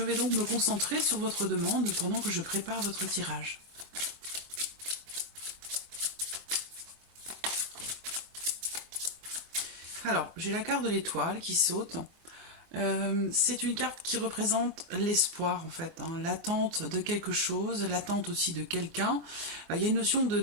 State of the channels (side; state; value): left; late; 24 ms